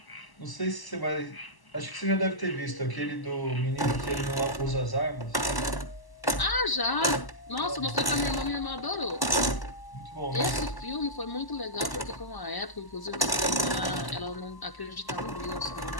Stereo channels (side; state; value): right; late; 1.0 ms